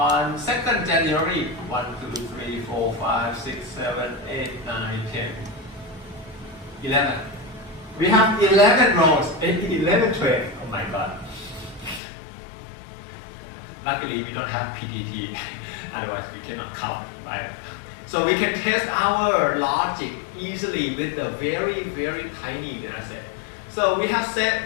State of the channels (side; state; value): right; drops out; at 12.0 s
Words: January, 1, 2, 3, 4, 5, 6, 7, 8, 9, 10, 11. We have 11 rows, 11 trades. Oh my God. Luckily, we don't have PTT, otherwise we cannot count, right? So we can test our logic easily with a very, very tiny data set. So we have